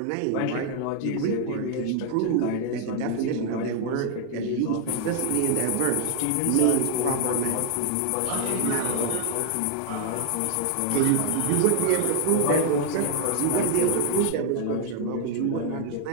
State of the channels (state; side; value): different; both; correlation 0.00